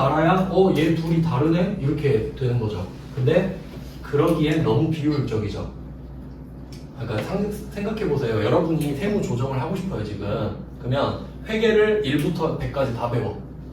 얘 둘이 다르네? 이렇게 되는 거죠. 근데 그러기엔 너무 비효율적이죠. 그러니까 생각해 보세요. 여러분이 세무 조정을 하고 싶어요 지금. 그러면 회계를 1부터 100까지 다 배워.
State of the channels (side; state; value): both; identical; correlation 1.00